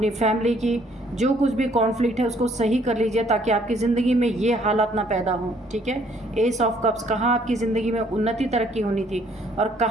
फैमिली की जो कुछ भी कॉन्फ्लिक्ट है उसको सही कर लीजिए, ताकि आपकी ज़िंदगी में ये हालात ना पैदा हों, ठीक है। एस ऑफ कप्स, कहाँ आपकी ज़िंदगी में उन्नति तरक्की होनी थी और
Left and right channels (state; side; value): normal; both; correlation 0.64